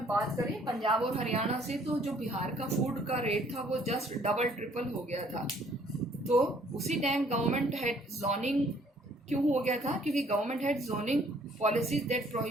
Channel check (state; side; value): normal; both; correlation 0.61